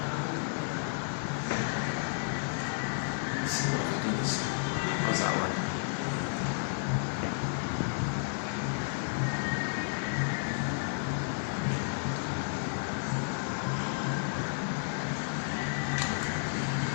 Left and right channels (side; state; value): right; silent; digital silence